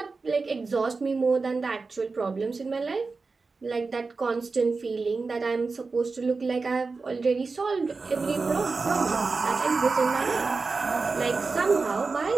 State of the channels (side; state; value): left; quieter; 4.2 dB